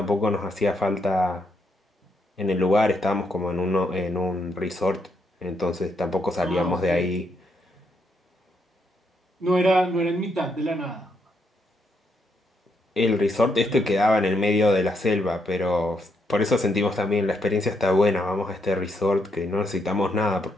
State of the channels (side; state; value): both; normal; correlation 0.77